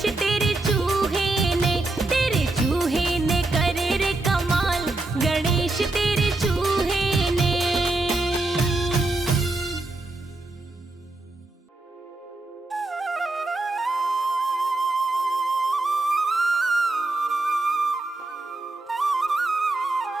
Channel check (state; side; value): quieter; left; 3.0 dB